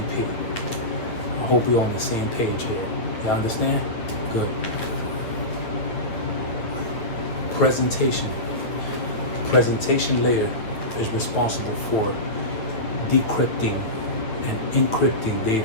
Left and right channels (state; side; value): late; right; 9.5 ms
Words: I hope we're on the same page here. You understand? Good. Presentation. Presentation layer is responsible for decrypting and encrypting